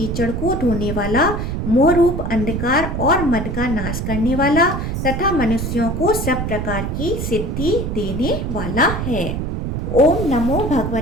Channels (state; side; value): noise; right; rumble, 3 dB below the sound